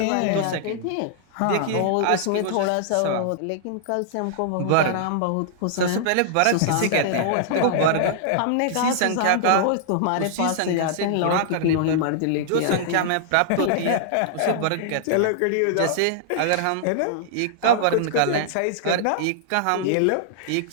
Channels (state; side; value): different; both; correlation -0.01